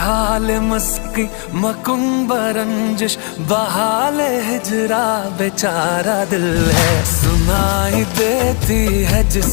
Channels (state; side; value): quieter; right; 37.2 dB